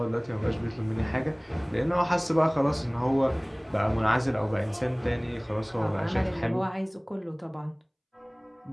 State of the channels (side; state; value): both; identical; correlation 1.00